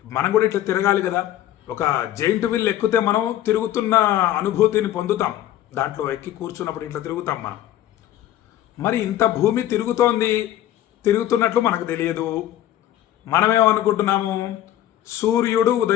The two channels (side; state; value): right; quieter; 12.7 dB